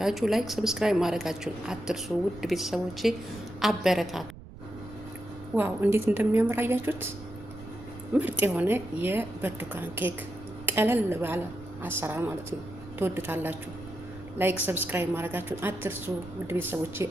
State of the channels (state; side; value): noise; right; rumble, 16 dB below the sound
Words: ላይክ፣ ሰብስክራይብ ማድረጋችሁን አትርሱ። ውድ ቤተሰቦቼ አበረታቱ። ዋው እንዴት እንደሚያምር አያችሁት? ምርጥ የሆነ የብርቱካን ኬክ ቀለል ባለ አሰራር ማለት ነው። ትወዱታላችሁ። ላይክ ሰብስክራይብ ማድረጋችሁን አትርሱ። ውድ ቤተሰቦቼ